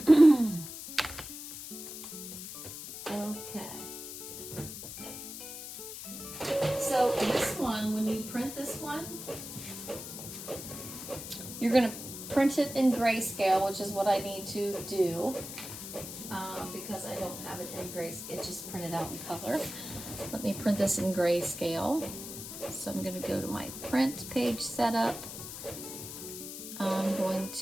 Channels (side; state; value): left; noise; hiss, 10 dB below the sound